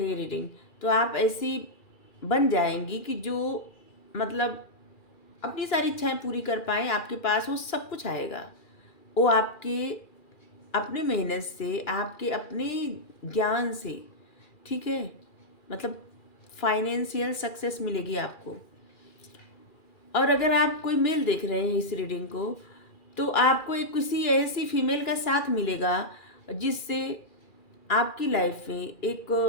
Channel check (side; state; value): right; late; 2.4 ms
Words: हैं रीडिंग, तो आप ऐसी बन जाएंगी कि जो मतलब अपनी सारी इच्छाएं पूरी कर पाएँ, आपके पास वो सब कुछ आएगा। वो आपके अपने मेहनत से, आपके अपने ज्ञान से, ठीक है, मतलब फाइनेंशियल सक्सेस मिलेगी आपको। और अगर आप कोई मेल देख रहे हैं इस रीडिंग को, तो आपको एक किसी ऐसी फीमेल का साथ मिलेगा जिससे आपकी लाइफ में एक